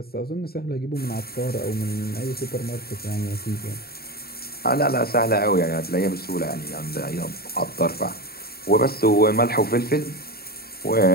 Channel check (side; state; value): right; late; 0.45 ms